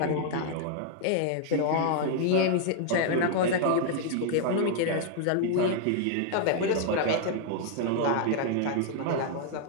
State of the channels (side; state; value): both; different; correlation 0.00